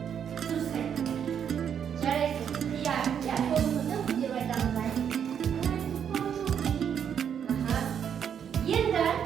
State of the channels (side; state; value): left; quieter; 8.2 dB